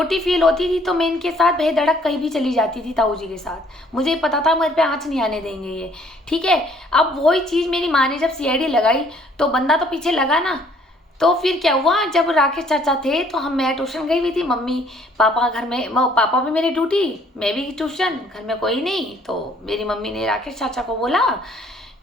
फील होती थी, तो मैं इनके साथ बेधड़क कहीं भी चली जाती थी ताऊ जी के साथ। मुझे पता था मेरे पे आँच नहीं आने देंगे ये। ठीक है, अब वही चीज़ मेरी माँ ने जब सीआईडी लगाई तो बंदा तो पीछे लगा ना। तो फिर क्या हुआ, जब राकेश चाचा थे तो मैं ट्यूशन गई हुई थी, मम्मी पापा घर में, पापा भी मेरी ड्यूटी, मैं भी ट्यूशन, घर में कोई नहीं। तो मेरी मम्मी ने राकेश चाचा को बोला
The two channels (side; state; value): both; normal; correlation 0.61